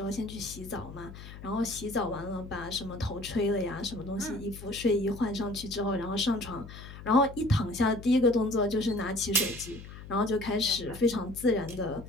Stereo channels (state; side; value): noise; left; hum, 14 dB below the sound